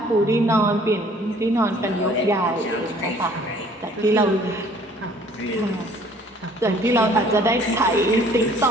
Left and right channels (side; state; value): both; normal; correlation 0.56